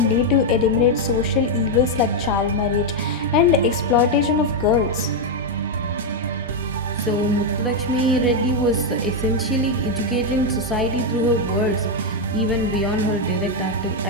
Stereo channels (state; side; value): normal; both; correlation 0.02